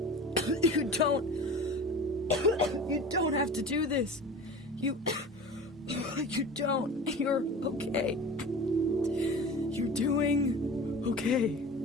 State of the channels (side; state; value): both; normal; correlation 0.36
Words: You don't have to do this. You don't. You're okay. You're doing okay.